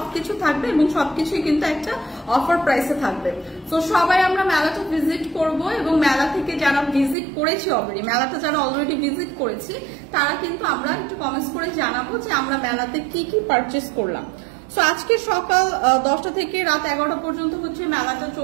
থাকবে এবং সবকিছুই কিন্তু একটা অফার প্রাইসে থাকবে। তো সবাই আমরা মেলাটা ভিজিট করব এবং মেলা থেকে যারা ভিজিট করেছি অলরেডি, মেলাটা যারা অলরেডি ভিজিট করেছি তারা কিন্তু আমরা একটু কমেন্টস করে জানাবো যে আমরা মেলাতে কি কি পারচেস করলাম। সো আজকে সকাল 10টা থেকে রাত 11টা পর্যন্ত হচ্ছে মেলাটা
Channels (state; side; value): drops out; left; at 7.2 s